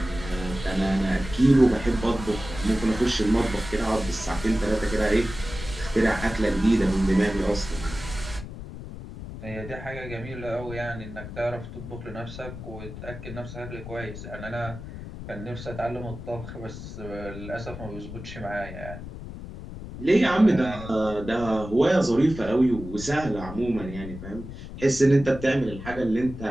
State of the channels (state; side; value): noise; left; rumble, 11 dB below the sound